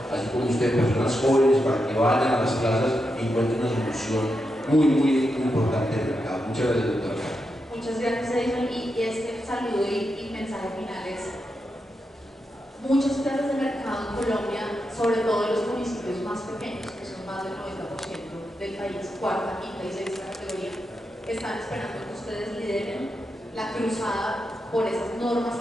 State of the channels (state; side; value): normal; both; correlation 0.86